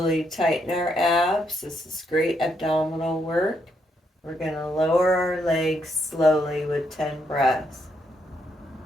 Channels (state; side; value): normal; both; correlation 0.77